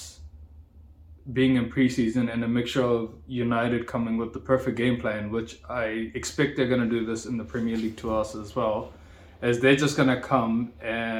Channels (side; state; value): both; identical; correlation 1.00